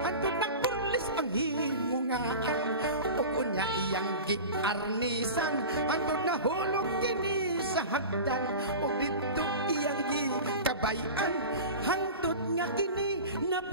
antod nagburlis ang himungaan. O kunya iyang giarnisan, antod nahulog kini sa hagdan. O dito iyang gikabayan, hantod nga kini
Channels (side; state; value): both; inverted; correlation -0.32